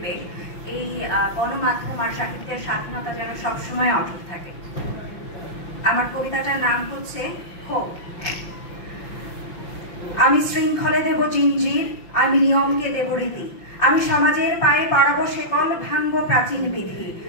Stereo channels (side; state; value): right; late; 5.8 ms